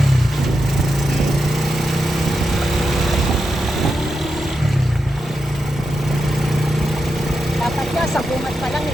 Dapat niya, sa bungat pa lang,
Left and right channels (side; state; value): both; normal; correlation 0.87